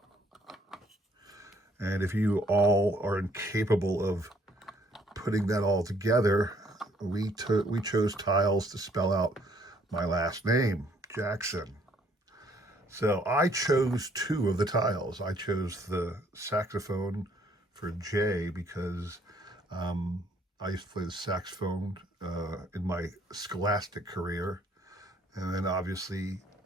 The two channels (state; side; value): normal; both; correlation 0.64